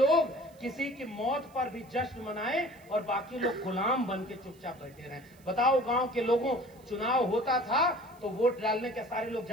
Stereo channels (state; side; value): noise; right; hiss, 29 dB below the sound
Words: किसी की मौत पर भी जश्न मनाएं और बाकी लोग गुलाम बन के चुपचाप बैठे रहें। बताओ, गांव के लोगों, चुनाव होता था तो वोट डालने के सारे लोग